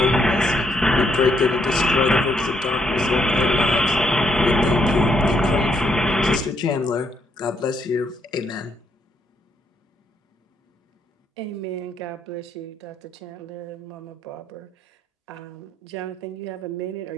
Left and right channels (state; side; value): normal; both; correlation 0.74